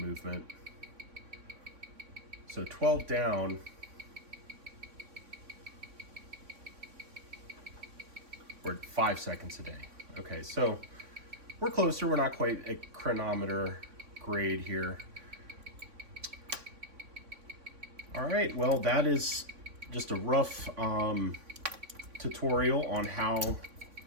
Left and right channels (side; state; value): left; late; 3.6 ms